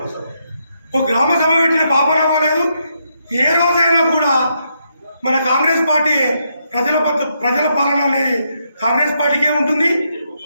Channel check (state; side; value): inverted; both; correlation -0.79